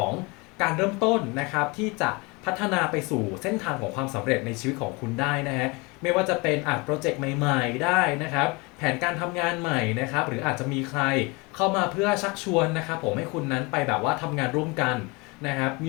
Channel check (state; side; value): quieter; right; 26.8 dB